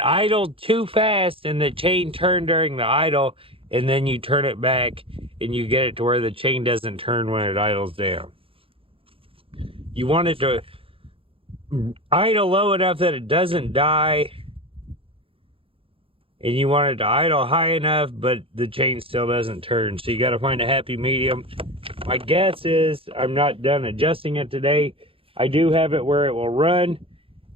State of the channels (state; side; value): late; left; 0.27 ms